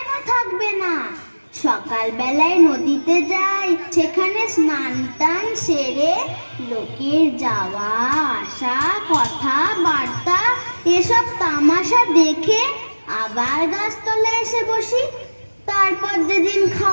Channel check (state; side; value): inverted; both; correlation -1.00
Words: থাকবে না? সকালবেলায় নদীতে যাই, সেখানে স্নান টান সেরে লোকের যাওয়া আসা, কথা বার্তা, এসব তামাশা দেখে আবার গাছতলায় এসে বসি। তারপর যেদিন